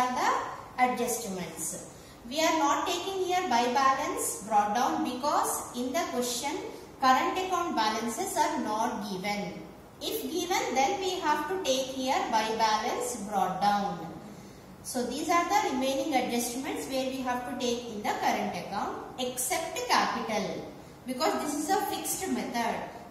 the adjustments. We are not taking here by balance brought down because in the question current account balances are not given. If given then we have to take here by balance brought down. So these are the remaining adjustments where we have to take in the current account except capital, because this is a fixed method.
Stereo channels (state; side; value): identical; both; correlation 1.00